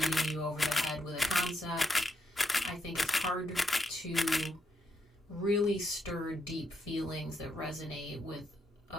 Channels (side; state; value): both; normal; correlation 0.80